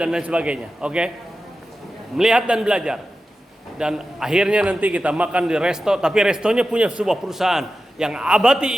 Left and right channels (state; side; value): normal; both; correlation 0.93